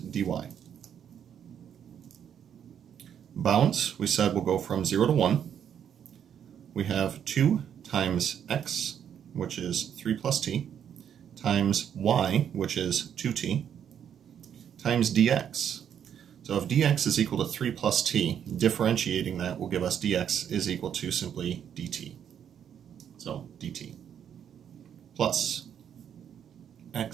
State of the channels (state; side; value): quieter; left; 8.8 dB